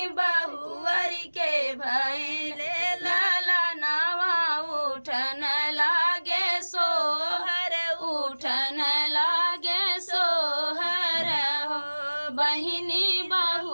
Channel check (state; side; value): inverted; both; correlation -1.00